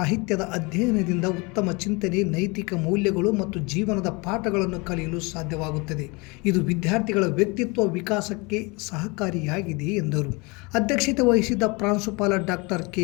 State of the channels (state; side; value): quieter; right; 27.4 dB